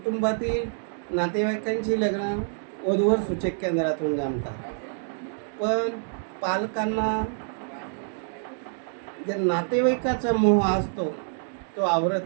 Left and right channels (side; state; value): left; silent; digital silence